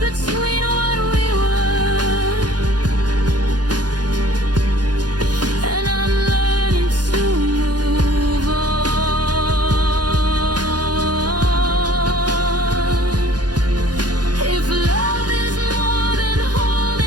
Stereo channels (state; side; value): late; left; 0.69 ms